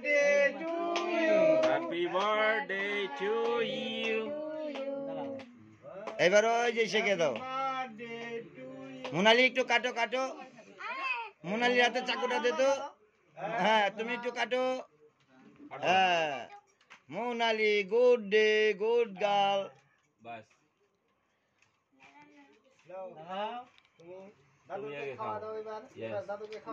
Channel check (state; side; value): identical; both; correlation 1.00